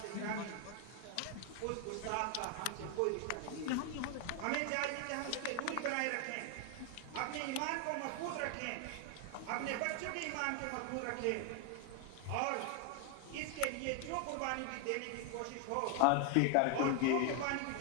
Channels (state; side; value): different; both; correlation 0.00